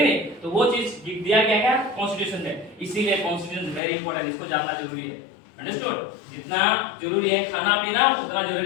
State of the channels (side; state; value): right; drops out; at 3.8 s